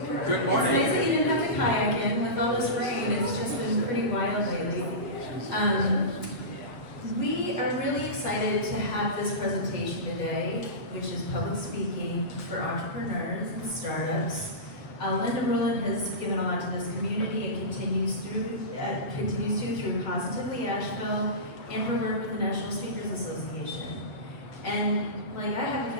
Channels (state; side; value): late; right; 7.6 ms